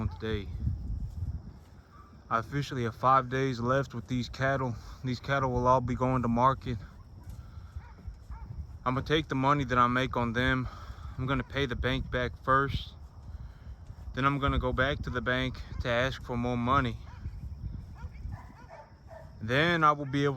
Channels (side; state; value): both; identical; correlation 1.00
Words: today? I officially have 5 days left with these cattle. These cattle will all be going to market. I'm gonna take the money that I make on them. I'm gonna pay the bank back first. Then I'm gonna go back to the bank to ask for more money. Then I will be